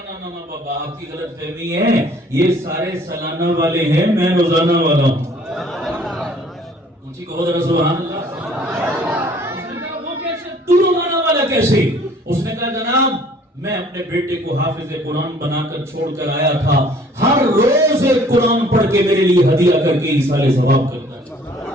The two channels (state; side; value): normal; both; correlation 0.56